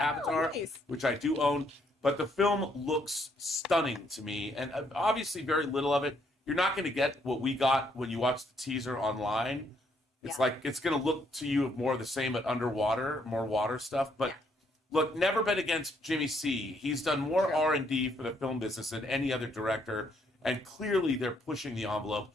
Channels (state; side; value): normal; both; correlation 0.71